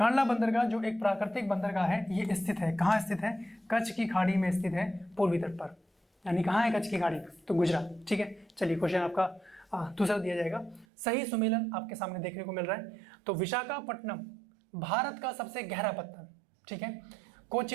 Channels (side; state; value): left; drops out; at 10.9 s